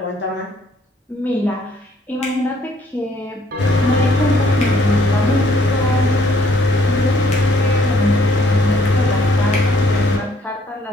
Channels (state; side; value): normal; both; correlation 0.65